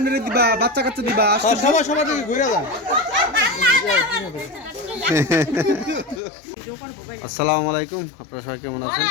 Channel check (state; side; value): drops out; right; at 6.2 s